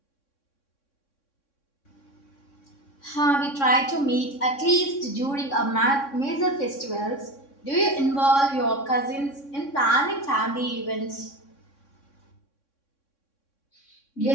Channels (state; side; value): late; right; 3.6 ms